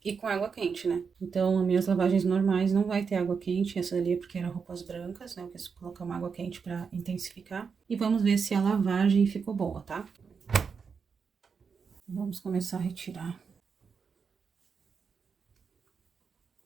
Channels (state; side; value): quieter; left; 5.8 dB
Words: e com água quente, né? Então, as minhas lavagens normais não vai ter água quente. Essa ali é porque eram roupas brancas, né? Eu quis colocar uma água quente pra intensificar. E vamos ver se a lavagem ficou boa, tá? Vamos começar a retirar.